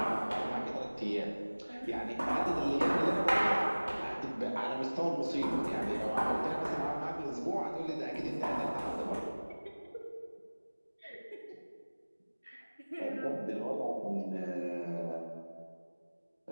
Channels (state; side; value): inverted; both; correlation -1.00